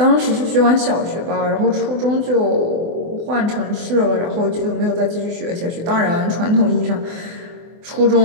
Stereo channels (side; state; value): left; late; 24 ms